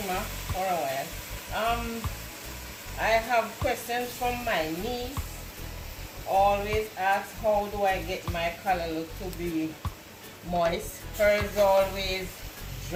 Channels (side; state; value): both; identical; correlation 1.00